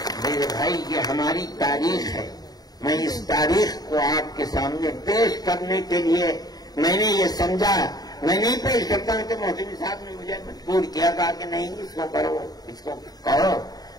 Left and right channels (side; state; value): right; late; 0.19 ms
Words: میرے بھائی یہ ہماری تاریخ ہے. میں اس تاریخ کو آپ کے سامنے پیش کرنے کے لیے میں نے یہ سمجھا. میں نہیں پیش کرتا ہوں تو محسن صاحب نے مجھے مجبور کیا, کہا کہ نہیں اس کو کرو, اس کو کہو.